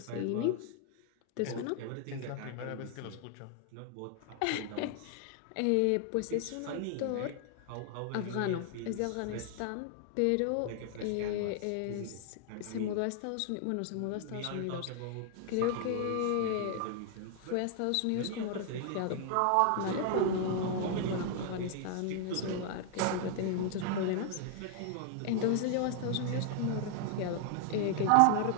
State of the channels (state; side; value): different; both; correlation 0.00